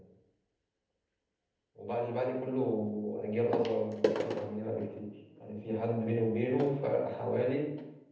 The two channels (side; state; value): both; identical; correlation 1.00